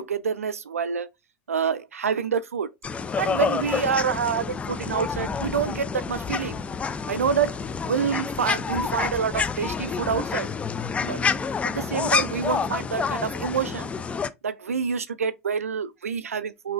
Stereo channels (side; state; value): both; normal; correlation -0.01